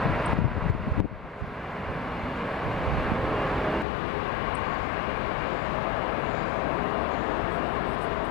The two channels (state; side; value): drops out; right; at 3.9 s